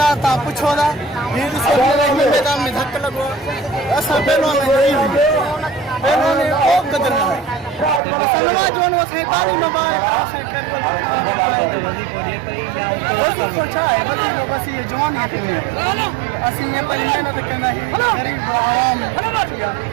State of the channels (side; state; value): left; drops out; at 8.0 s